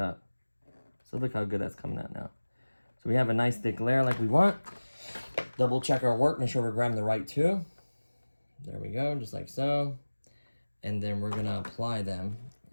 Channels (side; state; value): both; inverted; correlation -1.00